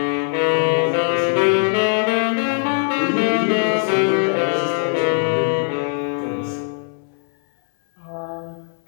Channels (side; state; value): right; silent; digital silence